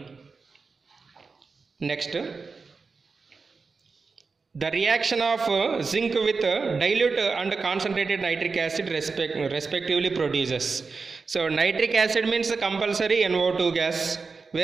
Next, the reaction of zinc with dilute and concentrated nitric acid respectively produces. So nitric acid means compulsory NO2 gas.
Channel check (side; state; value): left; quieter; 4.6 dB